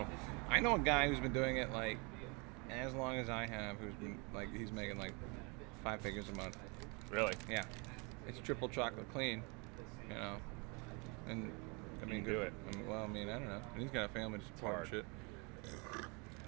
though. I know a guy who's been doing it like as long as I have, who's been like he's making like 5 figures a month. Really? Yeah. It's triple chocolate clean, you know. And I mean, do it. I mean, well, I mean, I don't know. And he's got a family to support and hard. shit.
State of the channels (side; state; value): left; quieter; 31.0 dB